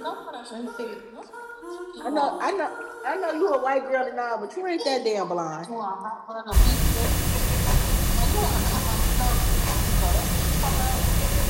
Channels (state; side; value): identical; both; correlation 1.00